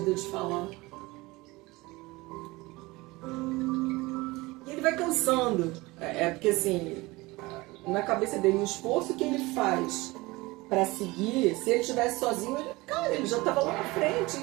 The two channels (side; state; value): left; quieter; 21.9 dB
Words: de falar. E ele vai cansando. Porque assim, na cabeça dele, o esforço que ele faz para seguir, se ele estivesse sozinho, ele já estava lá na frente